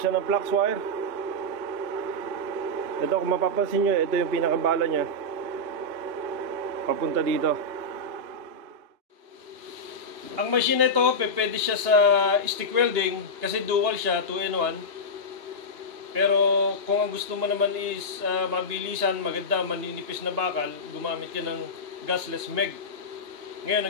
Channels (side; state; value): left; late; 2.9 ms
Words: ng flux wire. Ito, kung mapapansin nyo, ito yung pinakabala nya papunta dito. Ang machine na ito, pwede siya sa stick welding kasi dual siya, 2-in-1. Pero kung ang gusto mo naman is mabilisan, maganda, maninipis na bakal, gumamit ka ng gasless MEG. Ngayon,